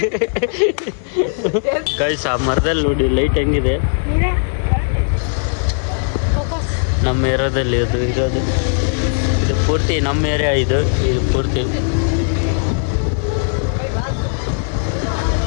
ಗೈಸ್ ಆ ಮರದಲ್ಲಿ ನೋಡಿ ಲೈಟ್ ಹೆಂಗಿದೆ. ನಮ್ಮ ಏರಿಯಾದಲ್ಲಿ ಅದು ಇರೋದು. ಇದು ಪೂರ್ತಿ ನಮ್ಮ ಏರಿಯಾ. ಇದು ಪೂರ್ತಿ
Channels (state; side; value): silent; right; 64 dB below the other